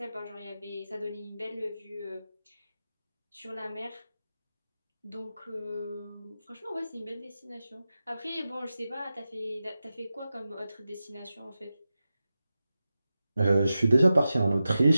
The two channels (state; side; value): inverted; both; correlation -0.93